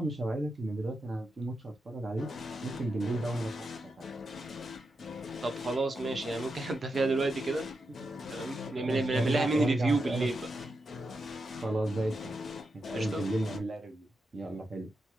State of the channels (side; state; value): both; normal; correlation 0.87